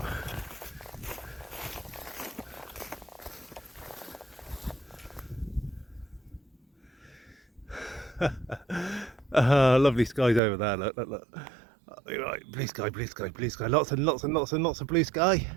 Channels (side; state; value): left; drops out; at 10.4 s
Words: Lovely skies over there. Look, look, look. Right, blue sky, blue sky, blue sky. Lots and lots and lots and lots of blue sky.